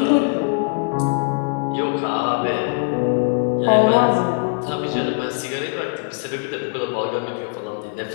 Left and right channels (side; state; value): right; silent; 65 dB below the other